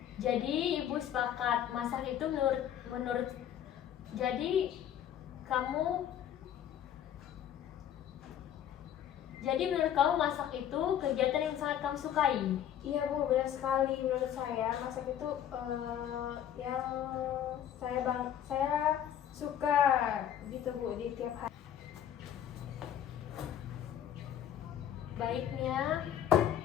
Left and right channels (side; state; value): right; quieter; 10.2 dB